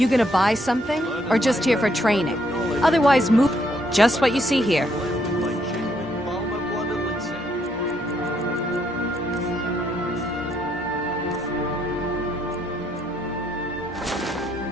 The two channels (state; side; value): normal; both; correlation 0.72